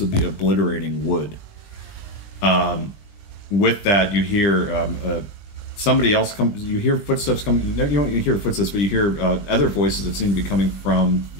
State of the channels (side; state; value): right; late; 20 ms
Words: be obliterating wood. With that, you hear somebody else come. You hear footsteps coming. No, you don't hear footsteps, but you hear other voices that seem to be coming from